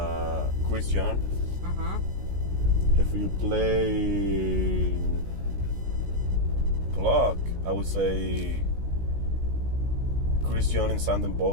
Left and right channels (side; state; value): left; late; 16 ms